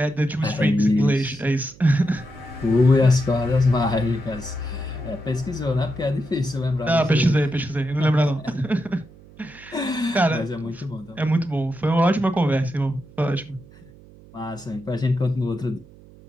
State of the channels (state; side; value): noise; right; hum, 23 dB below the sound